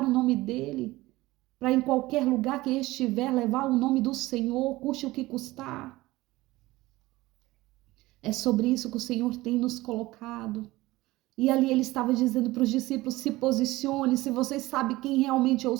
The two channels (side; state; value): left; quieter; 18.9 dB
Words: o nome dEle, para em qualquer lugar que estiver levar o nome do Senhor, custe o que custar. É sobre isso que o Senhor tem nos colocado. E ali ele estava dizendo para os discípulos, se posicione, se vocês sabem quem realmente eu